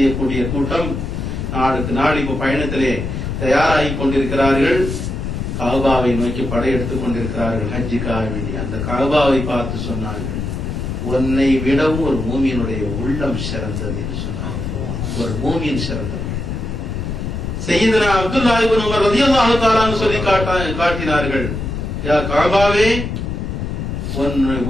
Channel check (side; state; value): left; noise; rumble, 4 dB below the sound